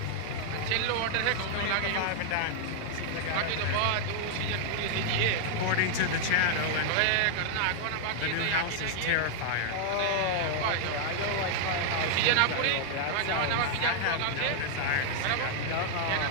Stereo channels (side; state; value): both; different; correlation -0.01